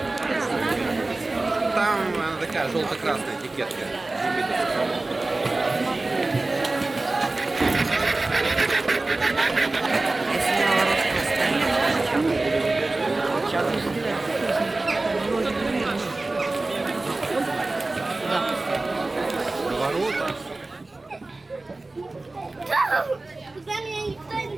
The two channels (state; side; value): quieter; left; 3.1 dB